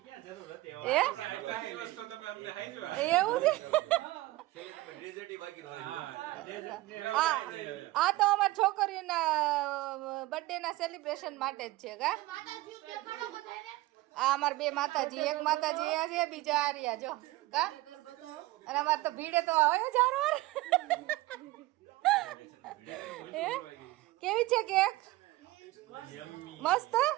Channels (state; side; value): quieter; left; 18.7 dB